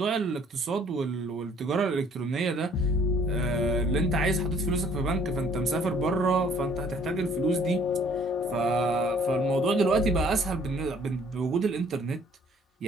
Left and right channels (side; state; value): both; normal; correlation 0.58